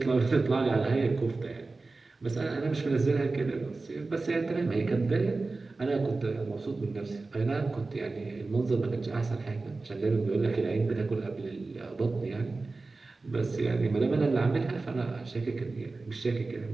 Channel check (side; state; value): left; quieter; 3.6 dB